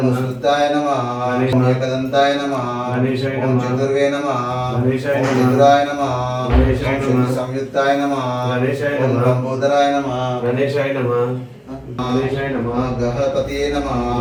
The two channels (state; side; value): identical; both; correlation 1.00